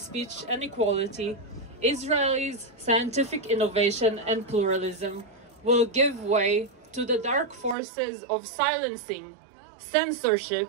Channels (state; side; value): drops out; left; at 7.8 s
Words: and equality, Israel's scientific innovation and pluralism will give way to the dark forces of silencing,